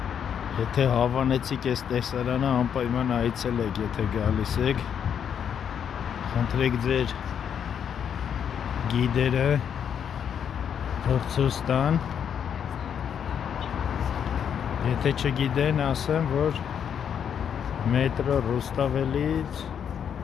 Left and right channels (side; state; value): right; quieter; 8.2 dB